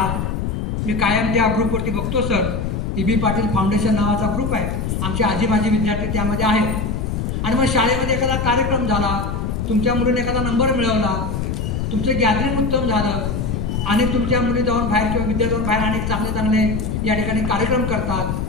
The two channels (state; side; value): noise; left; rumble, 2 dB below the sound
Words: मी कायम त्या ग्रुपवरती बघतो सर, E.B. पाटील फाउंडेशन नावाचा ग्रुप आहे, आमचे आजी माजी विद्यार्थी त्यामध्ये आहेत. आणि मग शाळेमध्ये एखादा कार्यक्रम झाला, तुमच्या मुलीने एखादा नंबर मिळवला, तुमचं गॅदरिंग उत्तम झालं आणि तुमच्या मुली जाऊन बाहेर किंवा विद्यार्थी जाऊन बाहेर अनेक चांगले चांगले या ठिकाणी कार्यक्रम करतात,